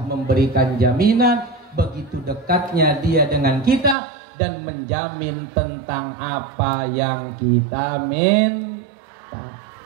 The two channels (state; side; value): drops out; left; at 4.0 s